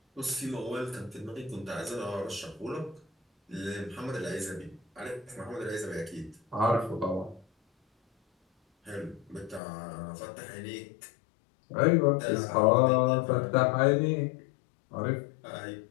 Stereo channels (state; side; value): drops out; right; at 9.6 s